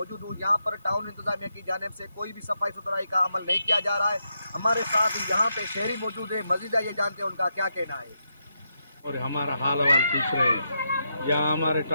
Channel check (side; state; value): both; inverted; correlation -0.83